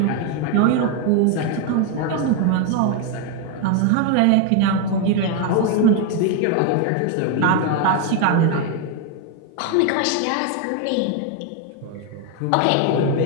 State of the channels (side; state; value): both; different; correlation 0.01